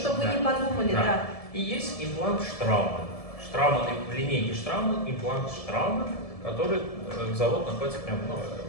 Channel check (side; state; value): right; late; 1.7 ms